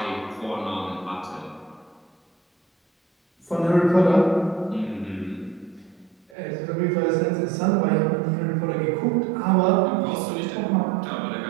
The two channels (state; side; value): drops out; left; at 6.4 s